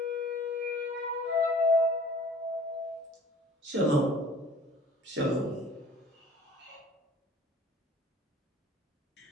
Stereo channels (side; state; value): both; normal; correlation 0.49